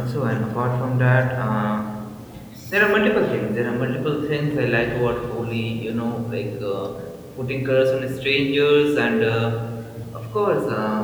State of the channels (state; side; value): identical; both; correlation 1.00